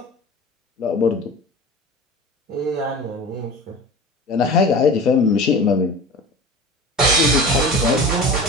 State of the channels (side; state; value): both; normal; correlation 0.35